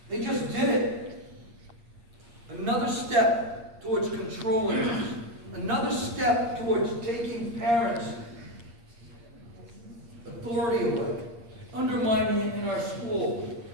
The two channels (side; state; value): left; late; 8.6 ms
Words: another step towards taking parents' authority away, undermining it in our school,